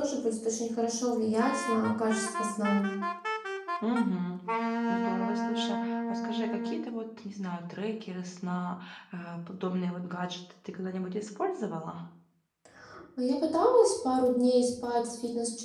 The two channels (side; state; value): both; identical; correlation 1.00